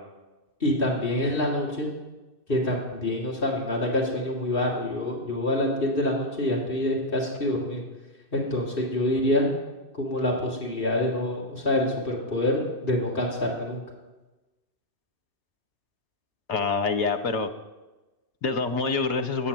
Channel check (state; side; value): late; right; 2.6 ms